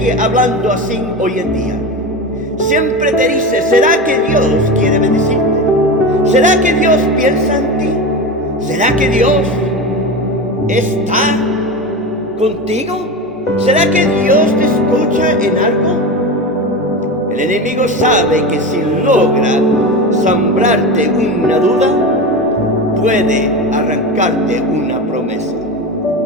hablando así hoy en día. Siempre te dice: ¿será que Dios quiere bendecirte? ¿Será que Dios piensa en ti? ¿Será que Dios está contigo? ¿Será que Dios te escucha en algo? El enemigo sabe que si logra sembrarte una duda, puede arrancarte una promesa.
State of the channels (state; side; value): normal; both; correlation 0.23